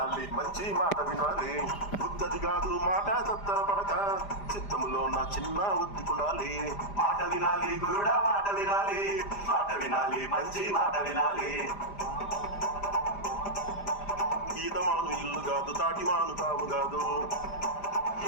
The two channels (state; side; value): late; right; 5.0 ms